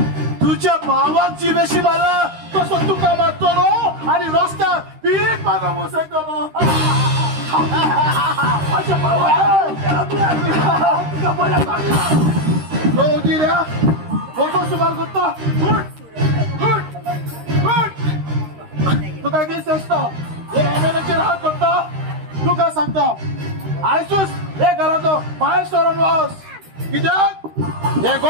तुझ्या भावाक जिवेशी मारला तसो तुका मारतलो आणि रस्त्यार पीठ मागो बसयतलो माझ्या भावाक तुका बरें सांगला जिऱ्या वचो सुमार करता तुका दीस आसता हे एमएलएचेर हात करता तुका सांगता आयसूच हे घराचो भायर सरून वच कित्याक हे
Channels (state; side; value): late; left; 13 ms